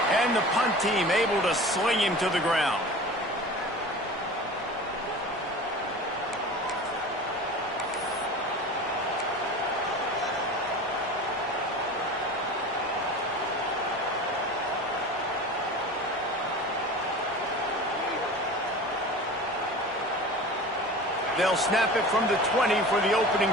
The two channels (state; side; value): normal; both; correlation 0.36